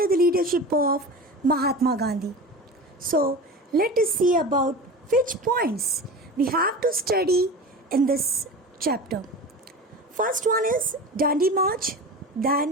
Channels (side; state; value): both; normal; correlation 0.31